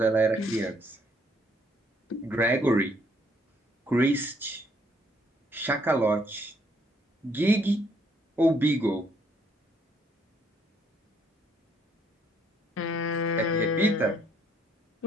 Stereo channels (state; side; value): normal; both; correlation 0.67